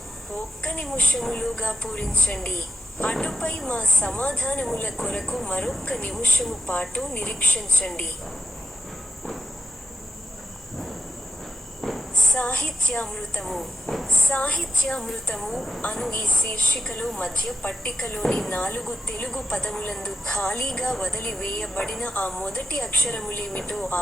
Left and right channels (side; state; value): both; normal; correlation 0.83